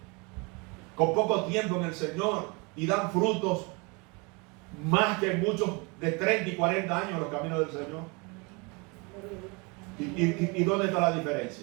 con poco tiempo en el Señor, y dan frutos más que muchos de 30 y 40 años en los caminos del Señor. ¿Y dónde está la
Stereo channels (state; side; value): quieter; left; 29.4 dB